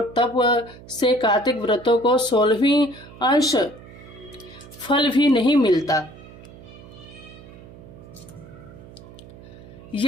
तप से कार्तिक व्रतों को 16वीं अंश फल भी नहीं मिलता।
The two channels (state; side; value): noise; right; hum, 19 dB below the sound